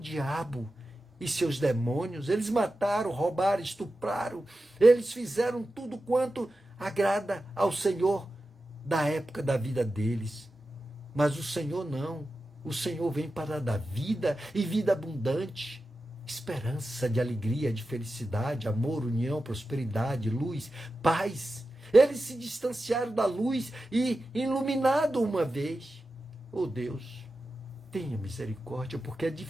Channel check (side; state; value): both; normal; correlation 0.92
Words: e seus demônios. Eles mataram, roubaram, estupraram, eles fizeram tudo quanto agrada ao Senhor da época da vida deles. Mas o Senhor não. O Senhor vem para dar vida e vida abundante, esperança de alegria, de felicidade, amor, união, prosperidade, luz, paz. Eles se distanciaram da luz e iluminado uma vez. Oh Deus, tenha misericórdia, porque é